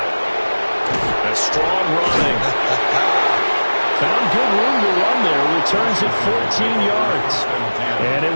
it. A strong running. Found good room to run there. Returns at 14 yards. And it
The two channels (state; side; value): inverted; both; correlation -1.00